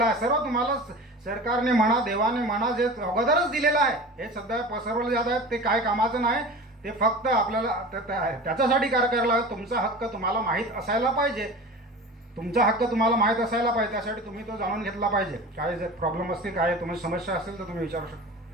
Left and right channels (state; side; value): normal; both; correlation 0.35